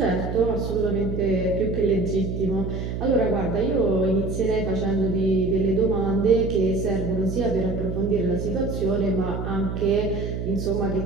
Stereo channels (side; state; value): right; noise; hum, 4 dB below the sound